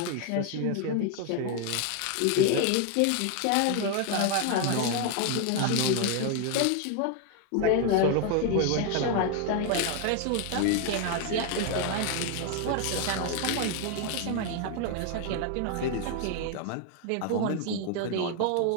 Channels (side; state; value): both; different; correlation 0.01